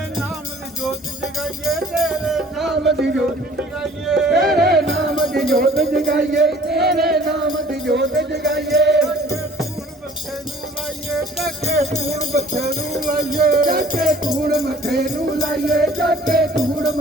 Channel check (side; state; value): both; normal; correlation 0.52